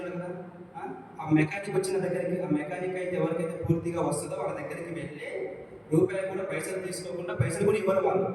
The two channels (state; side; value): identical; both; correlation 1.00